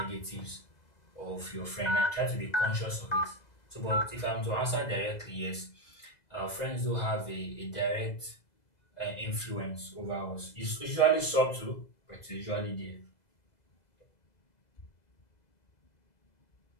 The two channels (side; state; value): right; late; 2.0 ms